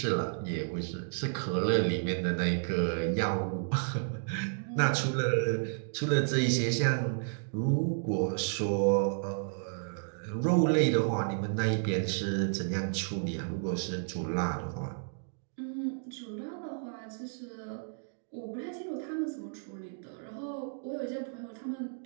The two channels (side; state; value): left; silent; digital silence